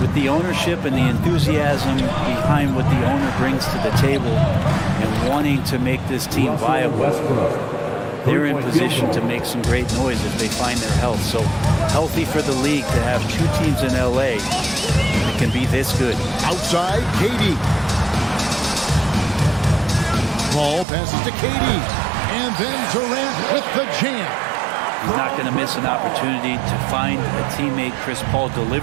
with the ownership and the enthusiasm behind what the owner brings to the table and wanting to make this team viable, they're in position to make some great noise if they find their health. So healthy for the league to have 2 teams in LA that can be this good. Outside, KD. Ball passes to KD. And then Durant with the jam. He's not going to miss an opportunity to find a teammate. Chris Paul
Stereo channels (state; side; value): drops out; left; at 20.9 s